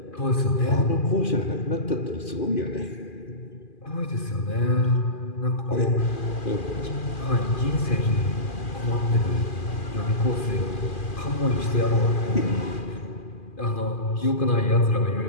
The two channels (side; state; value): right; late; 2.4 ms